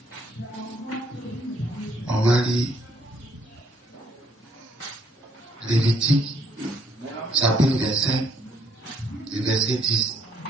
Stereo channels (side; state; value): both; normal; correlation 0.68